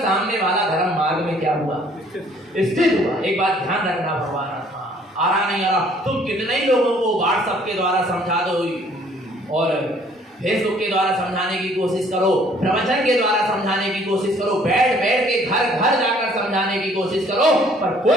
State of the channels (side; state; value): both; normal; correlation 0.59